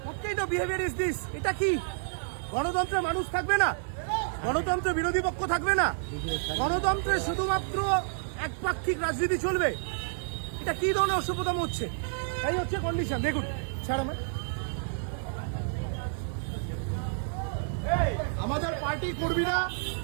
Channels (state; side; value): silent; left; 58 dB below the other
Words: What kind of behaviour is this? এটা কি গণতন্ত্রে মানুষ থাকবে না? গণতন্ত্রে বিরোধী পক্ষ থাকবে না? গণতন্ত্রে শুধুমাত্র একপাক্ষিক রাজনীতি চলবে? এটা কি ধরনের অসভ্যতাম হচ্ছে? এই হচ্ছে কন্ডিশন। দেখুন, ছাড় আমাদের পার্টি কর্মীরা